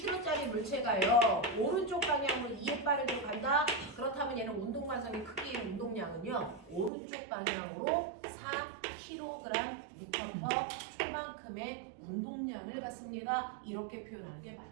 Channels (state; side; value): drops out; left; at 6.9 s